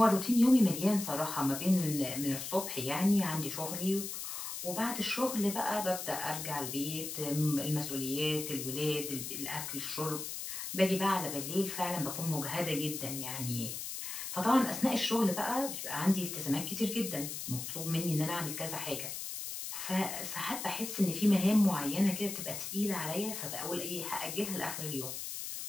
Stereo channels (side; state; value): left; noise; hiss, 6 dB below the sound